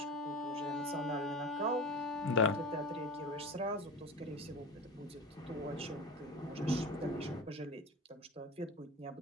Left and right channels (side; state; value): both; normal; correlation 0.31